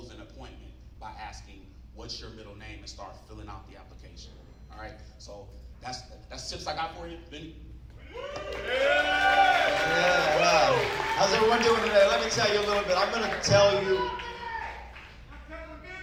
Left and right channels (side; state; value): both; identical; correlation 1.00